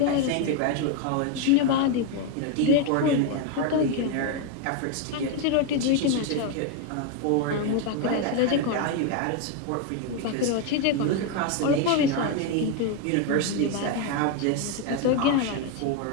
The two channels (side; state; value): both; different; correlation 0.01